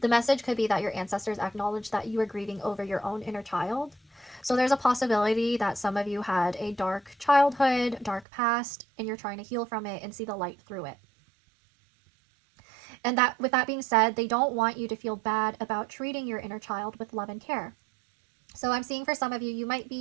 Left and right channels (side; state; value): left; drops out; at 8.2 s